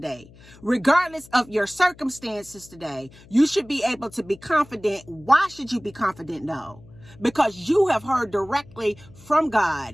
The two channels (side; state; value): left; noise; hum, 23 dB below the sound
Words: regardless of your circumstances today. You should be able to be confident. Why should you be confident? No, because you have heard directly from